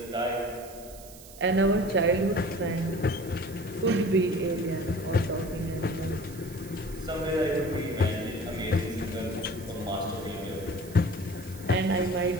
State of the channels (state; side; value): noise; right; hiss, 18 dB below the sound